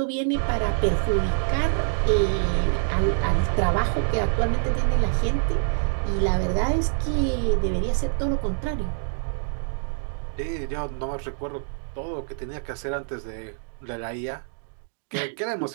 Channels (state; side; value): silent; left; digital silence